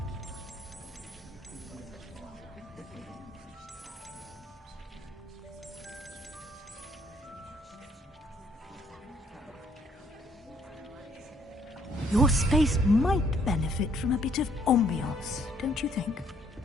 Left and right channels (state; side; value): normal; both; correlation 0.66